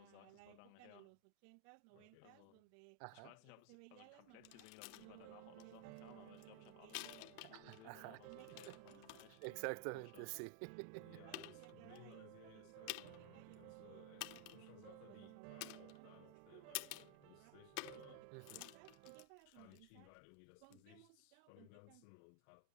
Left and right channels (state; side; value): different; both; correlation 0.00